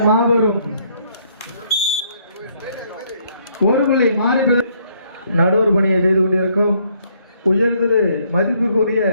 மாபெரும் ஒரு புள்ளி மாறி நடுவர் பணியை செய்து கொண்டிருக்கும் உயர்திரு மதிப்புக்குரிய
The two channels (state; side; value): inverted; both; correlation -0.68